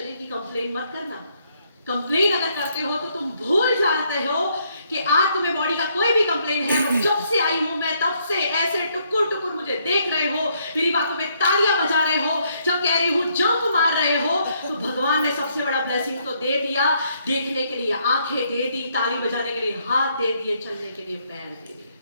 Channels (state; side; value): inverted; both; correlation -0.71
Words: की कंप्लेन मत करना। कंप्लेन अगर करते हो तो तुम भूल जाते हो कि आज तुम्हें बॉडी का कोई भी कंप्लेन है, और जब से आई हूं मैं तब से ऐसे टुकुर टुकुर मुझे देख रहे हो, मेरी बातों पे तालियां बजा रहे हो, जब कह रही हूं जंप मार रहे हो, तो भगवान ने सबसे बड़ा ब्लेसिंग तो दे दिया, देखने के लिए आंखें दे दी, ताली बजाने के लिए हाथ दे दिए, चलने के लिए पैर दे दिए।